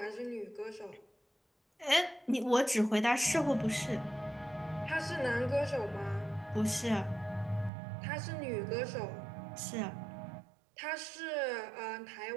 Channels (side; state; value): left; drops out; at 7.7 s